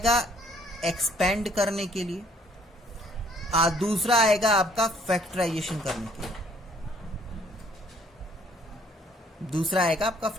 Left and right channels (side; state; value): both; normal; correlation 0.61